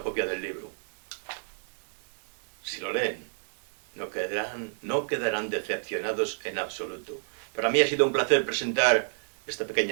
copia del libro. Si lo leen, no quedarán decepcionados en absoluto. Para mí ha sido un placer presentar esta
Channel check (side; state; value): left; silent; digital silence